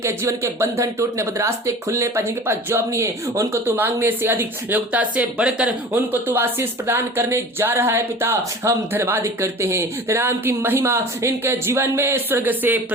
जीवन के बंधन टूटने, बदरास्ते खुलने पर, जिनके पास जॉब नहीं है उनको तू मांगने से अधिक, योग्यता से बढ़कर उनको तू आशीष प्रदान करने जा रहा है। पिता हम धन्यवाद करते हैं, तेरे नाम की महिमा इनके जीवन में स्वर्ग से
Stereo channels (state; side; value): normal; both; correlation 0.39